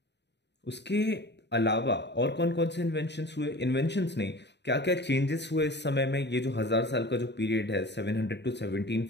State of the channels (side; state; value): right; late; 0.50 ms